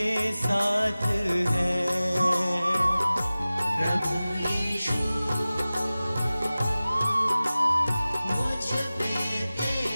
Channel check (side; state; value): both; inverted; correlation -0.97